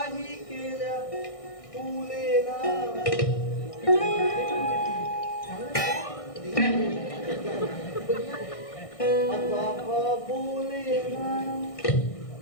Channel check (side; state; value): right; late; 1.6 ms